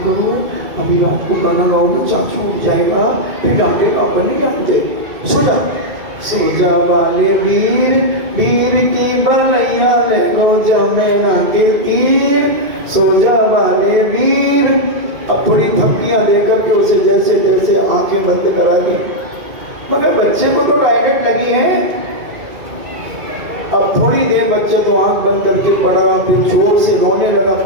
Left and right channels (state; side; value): late; left; 2.3 ms